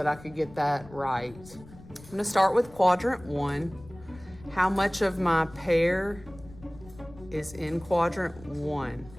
I could get that right. I'm gonna start with quadrant 1. How much of my pear is in quadrant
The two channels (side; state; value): left; noise; rumble, 20 dB below the sound